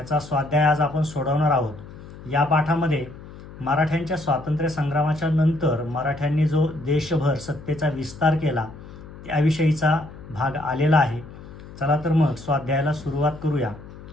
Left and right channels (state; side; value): noise; left; hum, 16 dB below the sound